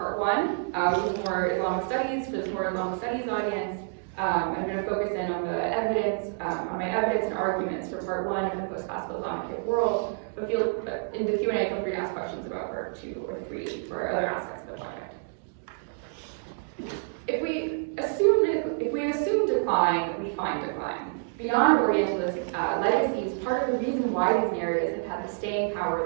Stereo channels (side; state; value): left; silent; digital silence